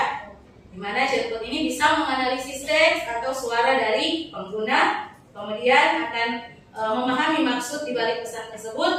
Di mana chatbot ini bisa menganalisis teks atau suara dari pengguna, kemudian akan memahami maksud di balik pesan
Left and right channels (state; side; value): identical; both; correlation 1.00